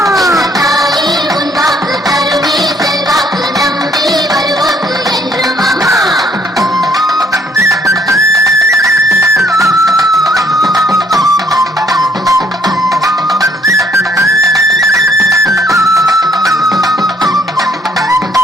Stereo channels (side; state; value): both; normal; correlation 0.66